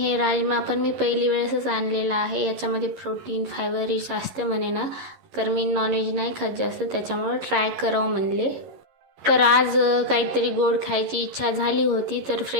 राजमा पण मी पहिली वेळेसच आणलेला आहे. याच्यामध्ये प्रोटीन, फायबर रिच असते म्हणे ना, तर मी नॉनव्हेज नाही खात जास्त, त्याच्यामुळे ट्राय करावं म्हणले. तर आज काहीतरी गोड खायची इच्छा झाली होती, तर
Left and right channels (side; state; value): left; late; 11 ms